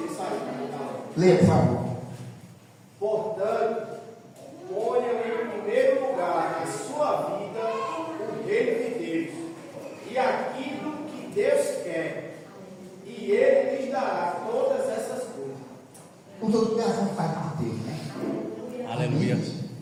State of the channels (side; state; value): both; identical; correlation 1.00